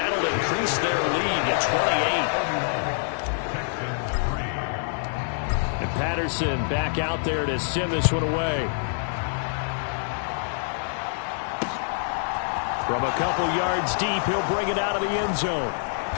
increase their lead to 28. And Patterson back out there to send this one away. From a couple yards deep, he'll bring it out of the end zone.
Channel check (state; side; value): silent; right; 61 dB below the other